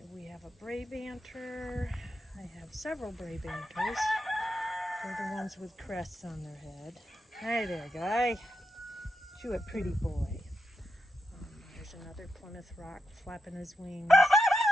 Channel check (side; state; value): both; normal; correlation 0.86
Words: we have a Brabanter. I have several Brabanters. They're the ones with crests on their head. Hi there, guy. You a pretty boy. There's another Plymouth Rock flapping his wings.